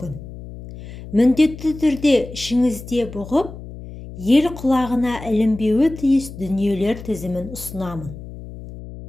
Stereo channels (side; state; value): left; noise; hum, 13 dB below the sound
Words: Міндетті түрде ішіңізде бұғып, ел құлағына ілінбеуі тиіс дүниелер тізімін ұсынамын.